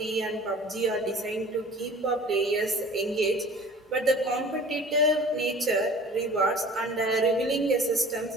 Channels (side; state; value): both; normal; correlation 0.45